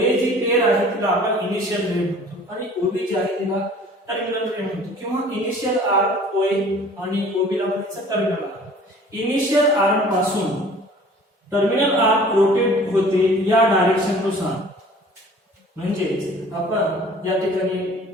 जी पेअर आहे तिला आपण इनिशियल रे म्हणतो आणि OB जी आहे तिला टर्मिनल रे म्हणतो, किंवा इनिशियल आर्म OA आणि OB ला म्हणायचं टर्मिनल आर्म। इनिशियल आर्म पासून टर्मिनल आर्म रोटेट होते या डायरेक्शन नुसार. म्हणजेच आपण या ठिकाणी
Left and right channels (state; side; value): normal; both; correlation 0.49